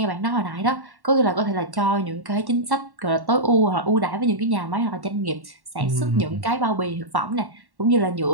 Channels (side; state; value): left; late; 1.1 ms